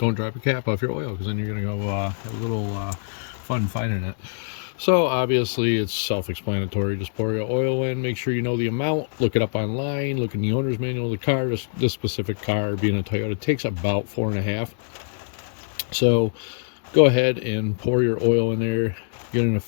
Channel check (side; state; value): right; silent; digital silence